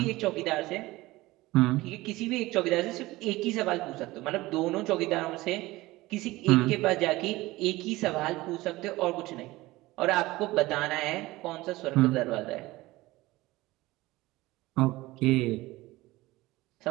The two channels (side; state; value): left; quieter; 19.2 dB